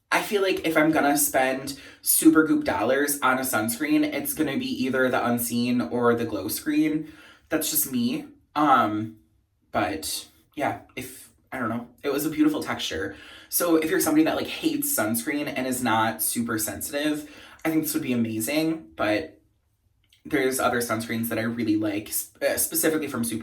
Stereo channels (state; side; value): identical; both; correlation 1.00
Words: I feel like if I'm gonna spend Supergoop dollars on a sunscreen, it's gonna be either the Unseen or the Glow Screen. That's just me. But yeah, I don't know, it was a beautiful texture. So if you're somebody that like hates sunscreen and is not super sensitive, I think this would be amazing. But there's other sunscreens that I really like, specifically from